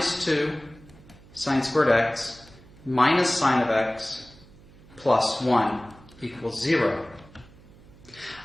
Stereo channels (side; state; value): right; noise; hum, 23 dB below the sound